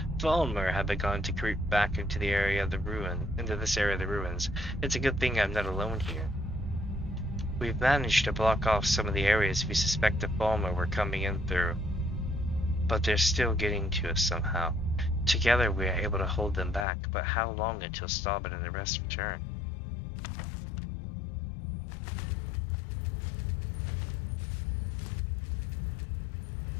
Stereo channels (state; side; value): drops out; right; at 16.9 s